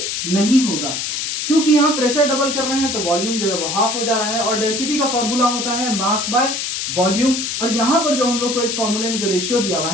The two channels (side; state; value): left; noise; hiss, 3 dB below the sound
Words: नहीं होगा क्योंकि यहाँ प्रेशर डबल कर रहे हैं तो वॉल्यूम जो है वो हाफ हो जा रहा है। और डेंसिटी का फॉर्मूला होता है मास बाय वॉल्यूम। और यहाँ पर जो हम लोग को इस फॉर्मूले में जो रेशियो दिया हुआ